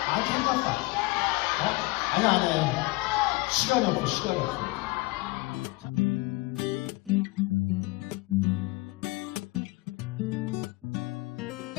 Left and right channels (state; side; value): quieter; right; 22.6 dB